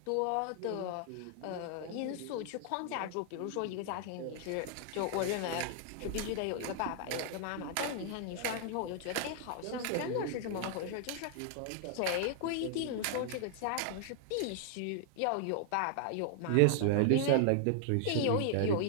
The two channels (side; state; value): both; different; correlation 0.00